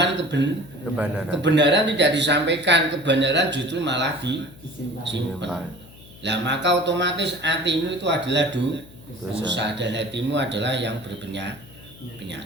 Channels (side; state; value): left; noise; hum, 21 dB below the sound